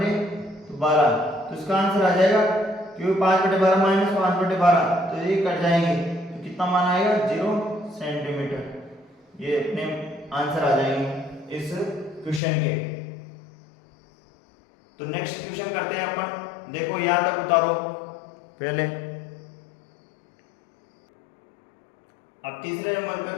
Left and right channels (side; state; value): right; drops out; at 12.4 s